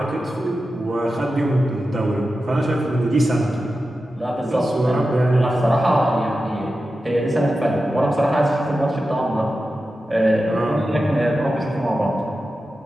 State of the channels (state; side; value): normal; both; correlation 0.92